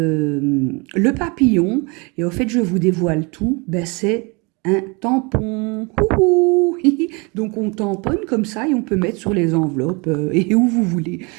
papillon. Et au fait, je vous dévoile tout, ben c'est un tampon. Ouhou. Donc on tamponne comme ça et on peut mettre sur les enveloppes et où vous voulez.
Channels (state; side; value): quieter; left; 29.3 dB